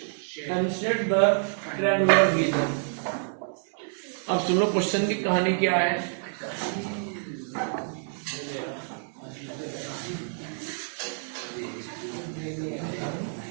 and set the triangular region. अब सुनो क्वेश्चन की कहानी क्या है।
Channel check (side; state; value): left; silent; digital silence